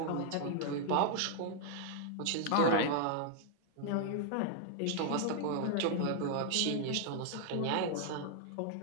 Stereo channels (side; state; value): both; different; correlation -0.01